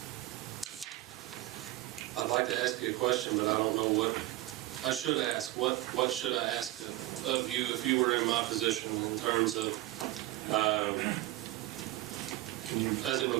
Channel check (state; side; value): quieter; left; 17.1 dB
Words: I'd like to ask you a question, but I don't know what I should ask. What should I ask of you if you were in my position in terms of, as it